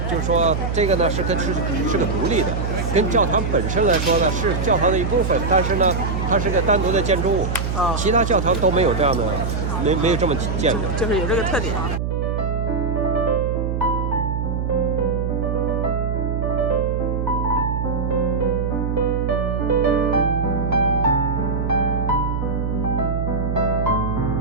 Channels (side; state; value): right; noise; hum, 1 dB below the sound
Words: 就是说这个呢是个独立的，跟教堂本身来说呢是教堂的一部分，但是呢它是个单独的建筑物。其他教堂都没有这样的，没有这么建的，就是有这个特点。